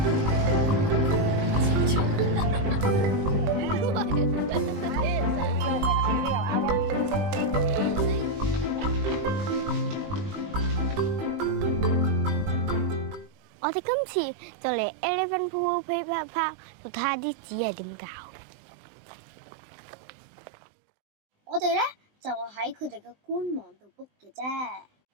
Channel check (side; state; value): left; late; 20 ms